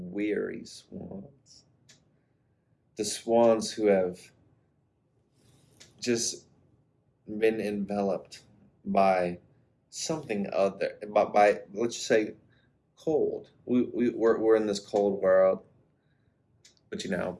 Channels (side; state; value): both; identical; correlation 1.00